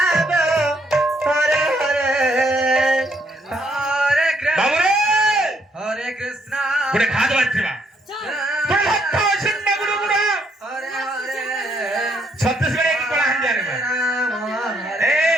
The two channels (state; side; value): normal; both; correlation 0.71